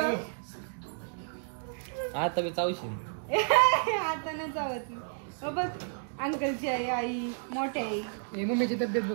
आता मी चावशील. आता आता नाही चावत बघ. अंकलची आई, आई मोठी आई. हे मम्मीची तब्येत बघ.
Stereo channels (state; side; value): silent; left; digital silence